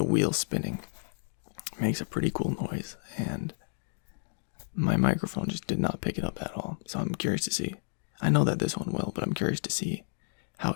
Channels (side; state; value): right; silent; digital silence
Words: wheel spinning makes a pretty cool noise, and my microphone just did not pick it up at all. So I'm curious to see. I know that this one will, but I'm curious to see how